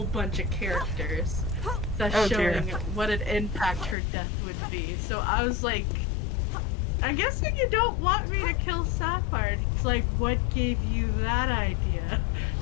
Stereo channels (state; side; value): drops out; right; at 4.0 s